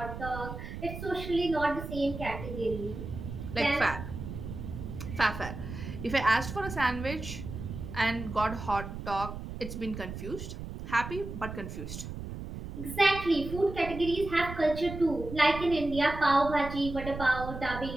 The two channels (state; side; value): noise; right; rumble, 8 dB below the sound